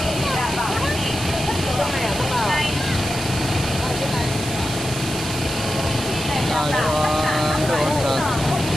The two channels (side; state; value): right; noise; hiss, 8 dB below the sound